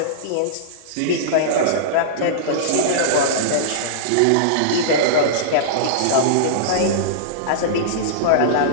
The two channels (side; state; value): both; different; correlation -0.03